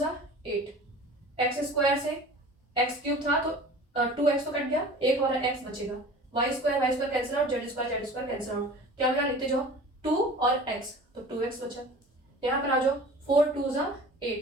8, एक्स स्क्वायर से एक्स क्यूब था तो 2x तो कट गया, एक हमारा x बचेगा, Y square cancel out, Z square cancel out, क्या बचा लिखते जाओ 2 और x, तो 2x बचा। यहाँ पर आ जाओ 4 2 जा 8,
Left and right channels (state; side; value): normal; both; correlation 0.41